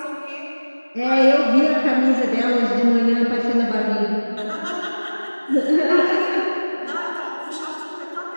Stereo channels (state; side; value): inverted; both; correlation -1.00